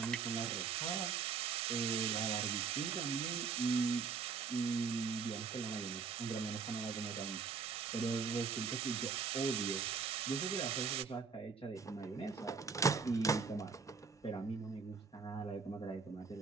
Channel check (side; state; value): left; quieter; 5.5 dB